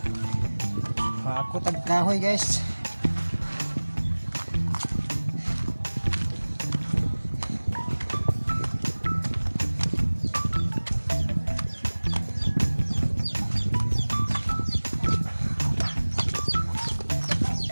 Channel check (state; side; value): inverted; both; correlation -1.00